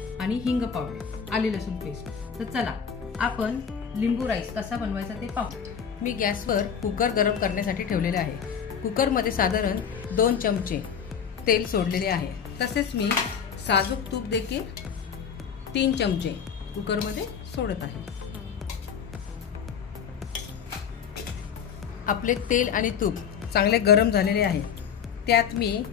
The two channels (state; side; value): quieter; right; 7.4 dB